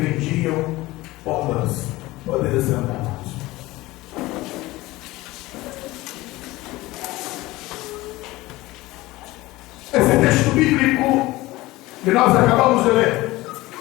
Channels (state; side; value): quieter; right; 19.2 dB